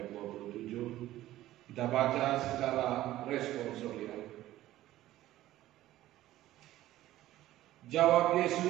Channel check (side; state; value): left; quieter; 14.8 dB